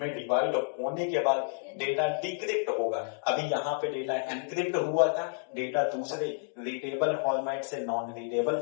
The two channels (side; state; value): right; silent; digital silence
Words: डिवाइड होने के बाद डेटा डिक्रिप्ट होगा। अभी यहाँ पे डेटा एनक्रिप्ट हुआ था, डेटा दूसरे रीडेबल फॉर्मेट से नॉन रीडेबल